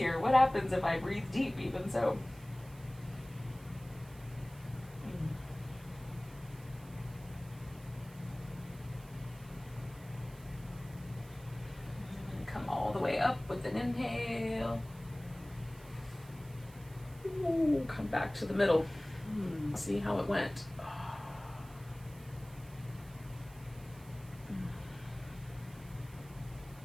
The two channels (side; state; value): right; noise; hiss, 22 dB below the sound